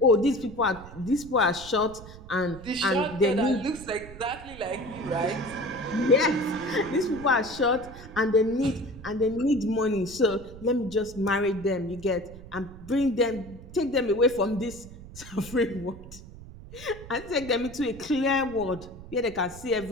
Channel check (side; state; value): right; noise; rumble, 16 dB below the sound